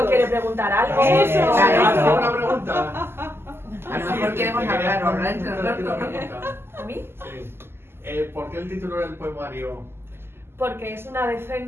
quiere preguntar algo. Eso. ¿Alguna una pregunta? A lo mejor queremos hablar entre Una nosotros. pregunta. ¿A mí? Sí. ¿Por qué el título del poemario? Porque es una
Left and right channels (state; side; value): late; left; 0.12 ms